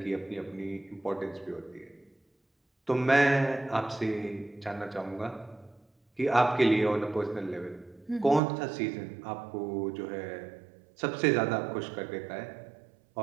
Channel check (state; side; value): drops out; left; at 8.4 s